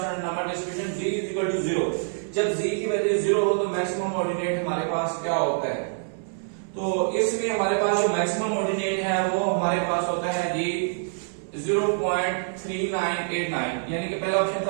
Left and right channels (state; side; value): silent; left; 61 dB below the other